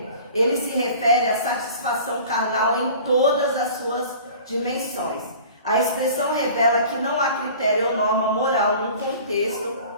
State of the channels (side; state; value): both; inverted; correlation -0.44